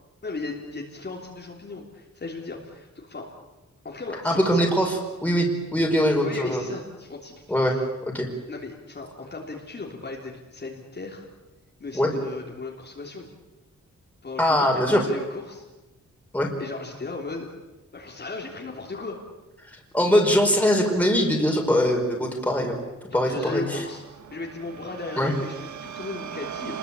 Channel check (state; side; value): normal; both; correlation 0.65